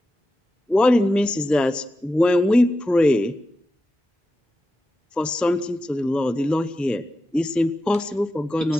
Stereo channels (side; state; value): both; normal; correlation 0.91